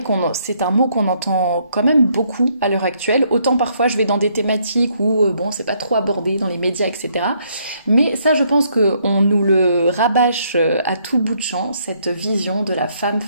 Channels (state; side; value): inverted; both; correlation -0.70